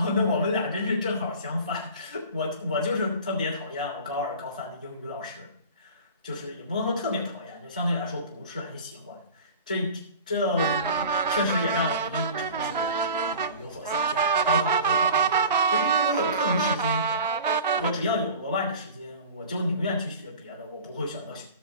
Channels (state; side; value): inverted; both; correlation -0.40